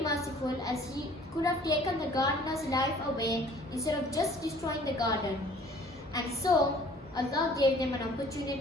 merciful, as He could have taken the gardener's life away instead of just destroying the garden. And so, Allah gave them an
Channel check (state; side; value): normal; both; correlation 0.53